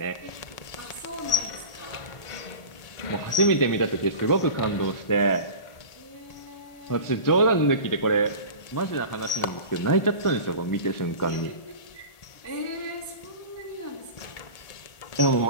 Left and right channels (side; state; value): right; late; 1.4 ms